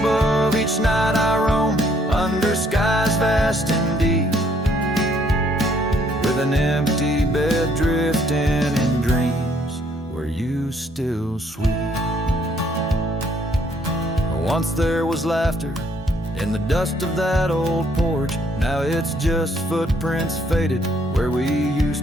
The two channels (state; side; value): normal; both; correlation 0.66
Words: Each night I roam under skies vast and deep, with an empty bed drifting in dreams where you still sweep. Once there was laughter in the dust of that old porch, now it's just footprints faded where we